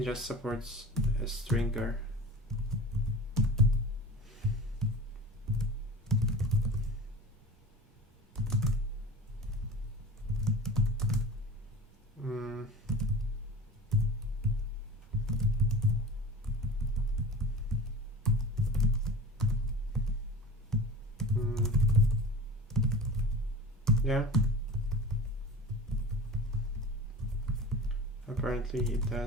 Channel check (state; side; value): normal; both; correlation 0.35